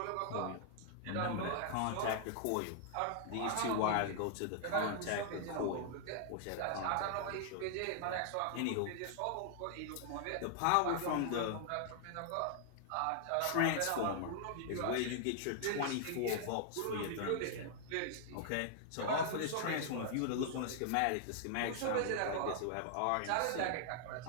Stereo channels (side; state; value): both; different; correlation -0.01